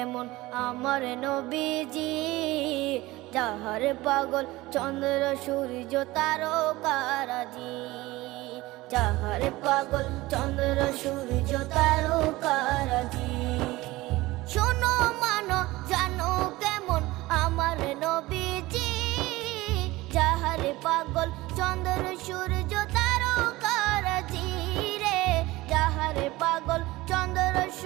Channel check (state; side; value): quieter; left; 19.4 dB